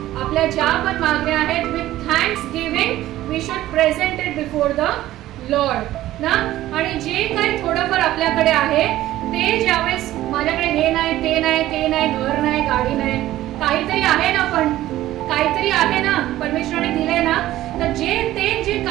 आपल्या ज्या पण मागण्या आहेत with thanksgiving we should present it before the Lord ना. आणि जे काही थोडंफार आपल्याकडे आहे ते ज्यावेळेस माझ्याकडे हे नाही, ते नाही, ते नाही, घर नाही, गाडी नाही, काहीतरी आहे ना, पण काहीतरी आहे ना, परमेश्वराने दिलंय ना. तर जे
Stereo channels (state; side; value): quieter; left; 14.7 dB